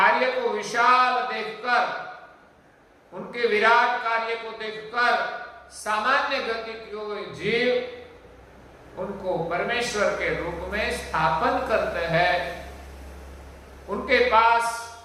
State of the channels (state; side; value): identical; both; correlation 1.00